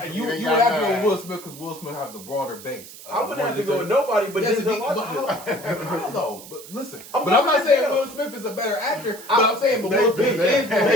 is. You would have to go with Will Smith because Will Smith has a broader base. I wouldn't have to go with nobody but Denzel Washington. How though? But listen, I'm but I'm not going saying Denzel. Will Smith is a better actor. But I'm saying, but Will Smith is more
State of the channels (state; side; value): noise; right; hiss, 16 dB below the sound